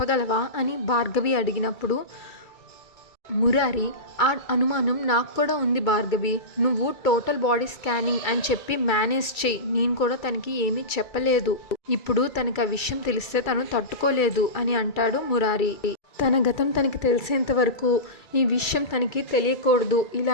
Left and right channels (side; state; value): right; late; 2.3 ms